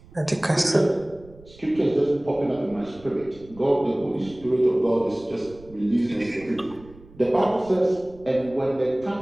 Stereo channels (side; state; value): right; noise; rumble, 22 dB below the sound